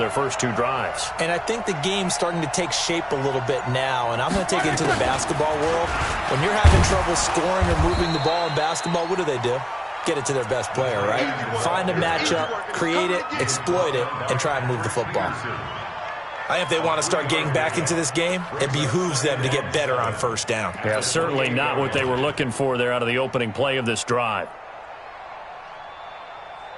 first 2 drives. And I think the game's starting to take shape a little bit now. And I'm going to take it into the basketball world. When you're having trouble scoring or moving the ball in basketball, what do? Get it to their best player, right? Find a matchup, create it, exploit it, and try and move the football. I think if they want to start getting back into this game, it behooves them to get better on first down. Yeah, certainly not what they were looking for there out of the opening play of this drive.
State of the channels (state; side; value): identical; both; correlation 1.00